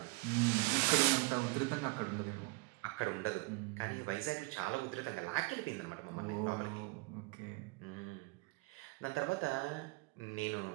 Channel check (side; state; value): left; quieter; 25.9 dB